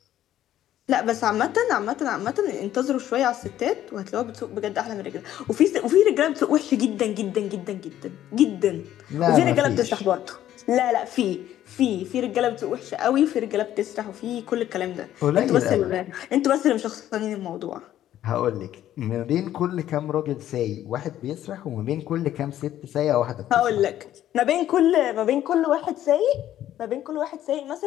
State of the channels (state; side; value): quieter; right; 12.2 dB